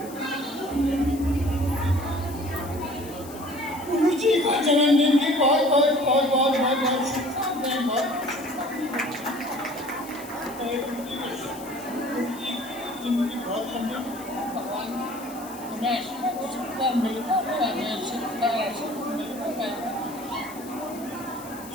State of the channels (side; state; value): left; noise; hiss, 17 dB below the sound